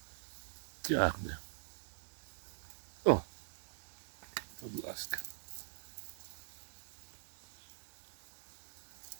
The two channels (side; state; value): left; silent; digital silence